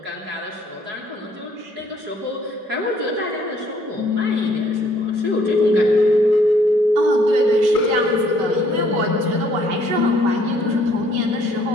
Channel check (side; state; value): left; late; 5.3 ms